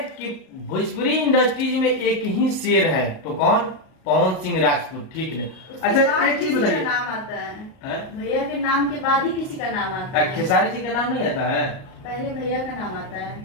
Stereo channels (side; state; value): right; late; 38 ms